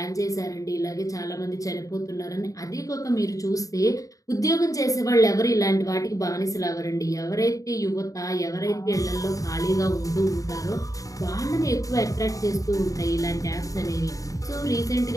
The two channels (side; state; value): right; late; 0.16 ms